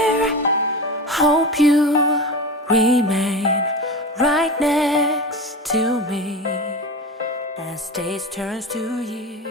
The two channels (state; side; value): normal; both; correlation 0.26